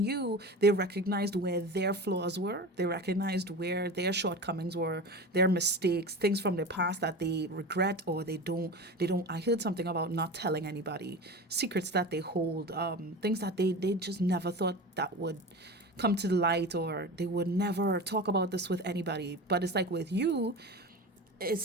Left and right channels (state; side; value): normal; both; correlation 0.30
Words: they recognized where their flaws were. They recognized where their shortcomings were, their mistakes, things from their past that they regret or they don't. I heard something about not telling anybody, secrets that they hold, things that they just never thought that would come to the light, or they would never talk about this with anybody. But it's like with you,